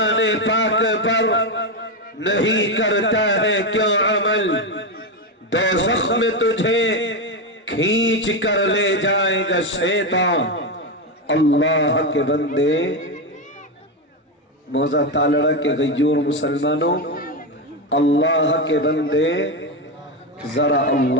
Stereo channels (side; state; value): both; normal; correlation 0.11